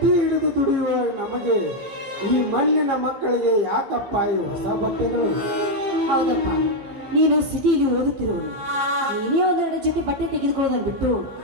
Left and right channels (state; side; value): late; left; 15 ms